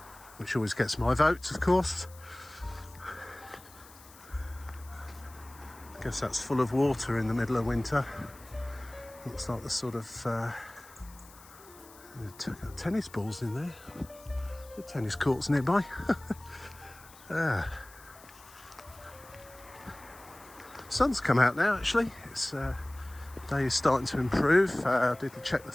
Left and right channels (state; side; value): noise; left; hiss, 22 dB below the sound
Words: which always gets my vote, of course. I guess that's full of water in the middle of winter. Looks like the sort of tennis balls in there. The tennis courts nearby. Sun's come out now actually. It's day is starting to improve. I did check the